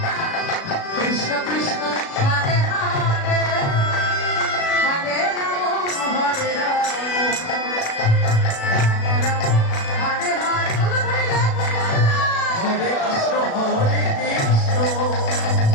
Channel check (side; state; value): right; late; 36 ms